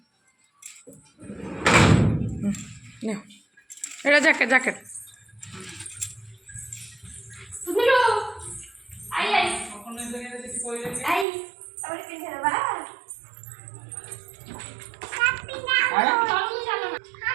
एटा जैकेट जैकेट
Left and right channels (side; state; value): left; drops out; at 11.2 s